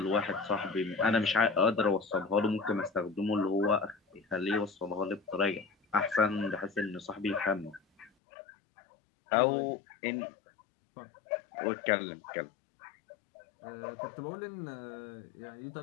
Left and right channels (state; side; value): drops out; right; at 8.1 s